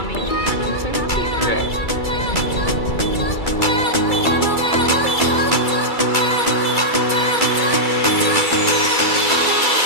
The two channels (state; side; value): late; right; 2.3 ms